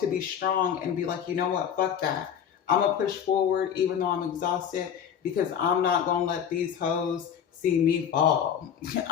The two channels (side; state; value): right; quieter; 8.5 dB